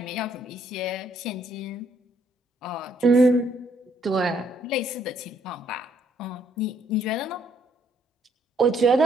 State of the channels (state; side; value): normal; both; correlation 0.69